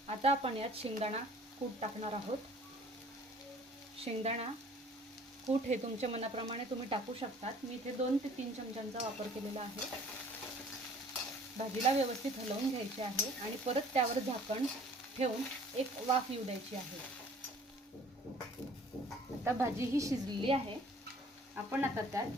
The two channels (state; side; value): normal; both; correlation 0.53